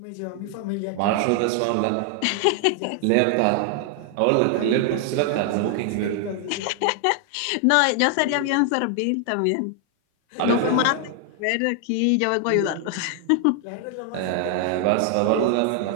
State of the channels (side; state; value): both; different; correlation 0.00